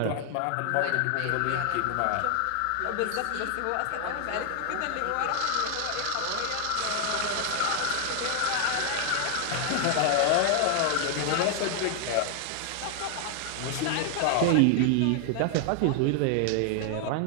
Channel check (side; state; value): both; different; correlation 0.00